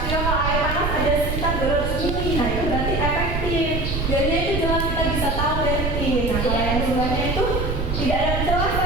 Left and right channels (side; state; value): right; noise; rumble, 1 dB below the sound